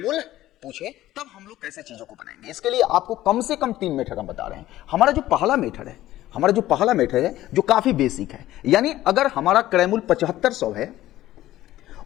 पूछे, तब हम लोग कैसे चीजों को बनाएंगे। इसके लिए आपको कम से कम 3 मेथड हम बता रहे हैं। हमारा जो पहला मेथड है, जो काफी बेसिक है, यानी अगर हमारा क्रैमुल 7500 है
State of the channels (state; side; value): quieter; right; 14.8 dB